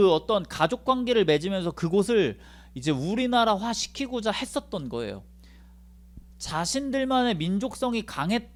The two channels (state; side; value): identical; both; correlation 1.00